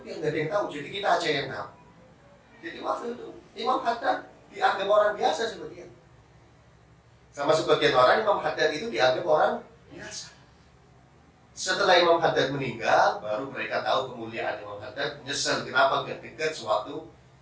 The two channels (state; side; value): identical; both; correlation 1.00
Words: nggak ada yang tahu. Jadi kita aja yang tahu." Jadi waktu itu Imam Haddad dianggap orang biasa sebagian. Sama sebagian orang Imam Haddad itu dianggap orang biasa. Setelah Imam Haddad meninggal, baru mereka tahu kemuliaan Imam Haddad, nyesel kenapa gak dekat sewaktu